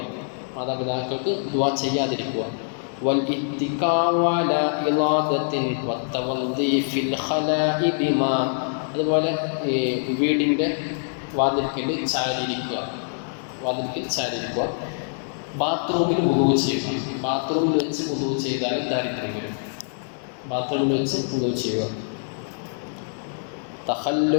മാതാപിതാക്കൾക്ക് ദുആ ചെയ്യാതിരിക്കുക. വൽഇത്തികാഉ അലാ ഇളാദത്തിൻ വത്തവദ്ദി ഫിൽ ഖലാഇ ബിമാ. അതുപോലെ വീടിൻ്റെ വാതിൽക്കൽ ചാരിയിരിക്കുക, ബാത്റൂമിൽ വുളൂ ചെയ്യുക. ബാത്റൂമിൽ വെച്ച് വുളൂ ചെയ്താൽ ദാരിദ്ര്യം വരും. ബാത്റൂമിൽ വെച്ച് വുളൂ ചെയ്യുക.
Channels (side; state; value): right; silent; digital silence